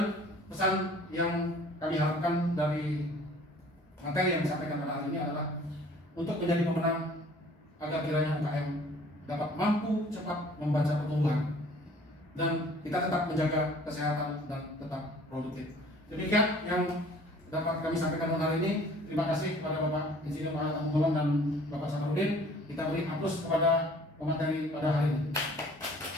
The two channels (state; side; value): normal; both; correlation 0.52